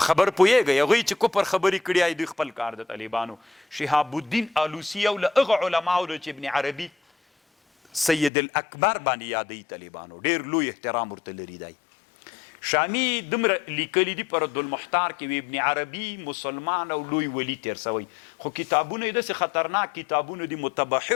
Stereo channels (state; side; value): drops out; right; at 8.3 s